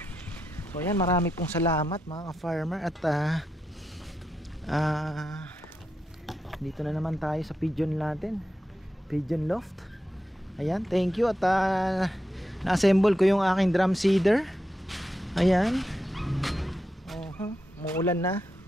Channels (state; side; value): normal; both; correlation 0.86